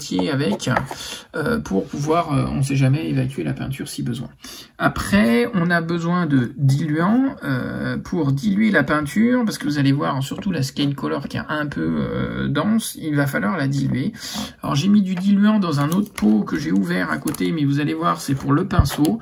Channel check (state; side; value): identical; both; correlation 1.00